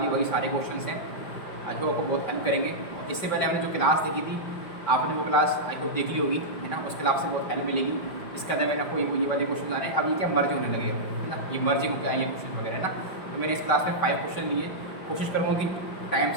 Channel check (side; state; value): right; late; 5.2 ms